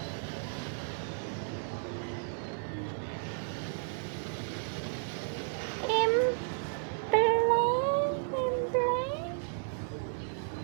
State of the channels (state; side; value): silent; left; digital silence